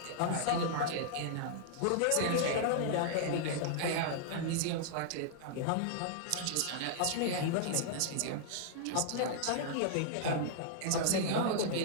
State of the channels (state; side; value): different; both; correlation -0.01